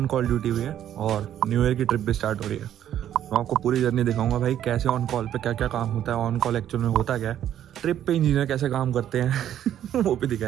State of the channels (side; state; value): left; quieter; 10.9 dB